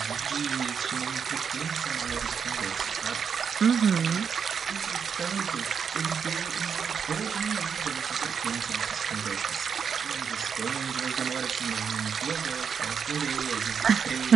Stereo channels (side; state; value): left; quieter; 6.7 dB